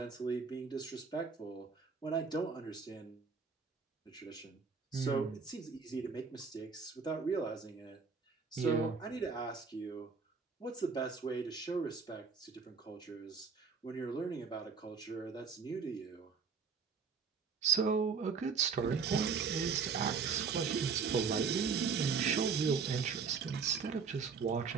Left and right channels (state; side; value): quieter; left; 5.5 dB